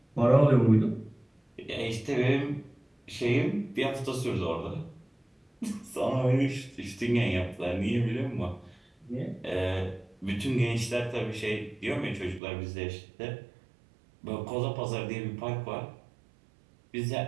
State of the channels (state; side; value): drops out; left; at 12.4 s